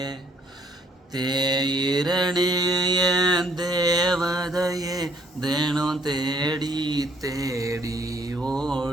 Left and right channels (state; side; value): normal; both; correlation 0.65